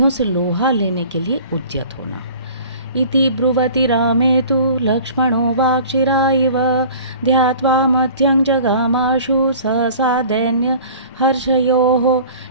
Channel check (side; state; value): both; inverted; correlation -0.45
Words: से लोहा लेने के लिए उद्यत होना। इति ब्रुवति रामे तु लक्ष्मणो वाक्शिराइव ध्यात्वा मध्यं जगामाशु सहसा दैन्य हर्षयोः।